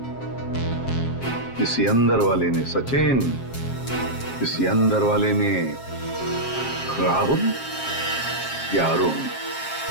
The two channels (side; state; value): right; late; 7.4 ms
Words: किसी अंदर वाले ने सचिन, किसी अंदर वाले ने राहुल या अरुण।